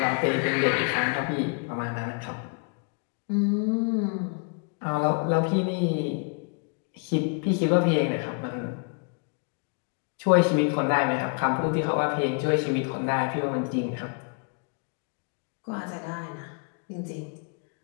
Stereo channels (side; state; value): right; quieter; 37.8 dB